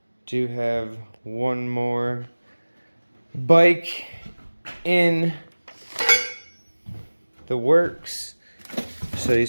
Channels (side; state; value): both; inverted; correlation -1.00